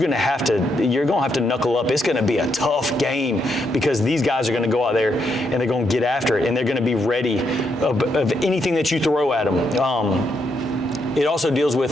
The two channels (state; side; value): normal; both; correlation 0.78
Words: to have to knuckle up. It's going to be a tough game because these guys are going to go out there and they're going to get after it and they're going to be ready of anything that you throw at them. It also deals